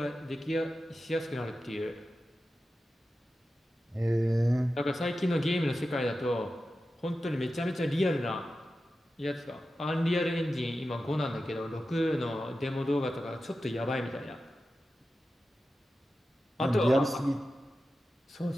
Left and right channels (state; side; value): normal; both; correlation 0.93